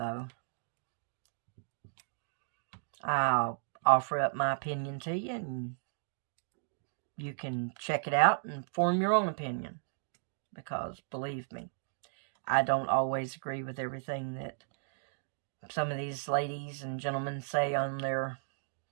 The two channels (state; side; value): silent; left; digital silence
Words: I'll offer up my opinion to you, and you can check it out and form your own opinion. Because, believe me, I don't always agree with everything that some of these ladies and gentlemen say on their